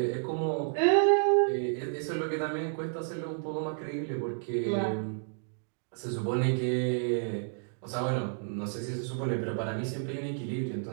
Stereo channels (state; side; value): silent; left; digital silence